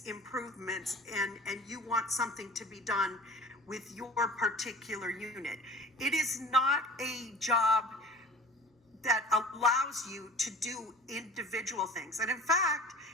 improvements and you want something to be done with your particular unit. It is not a job that allows you to do individual things. And in fact,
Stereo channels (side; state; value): both; normal; correlation 0.43